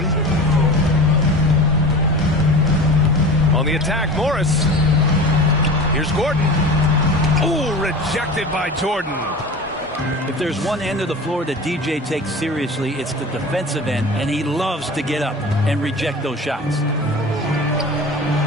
On the attack, Morris. Here's Gordon. Ooh, rejected by Jordan. If there's one end of the floor that DJ takes seriously, it's the defensive end, and he loves to get up and reject those shots.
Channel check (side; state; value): both; normal; correlation 0.35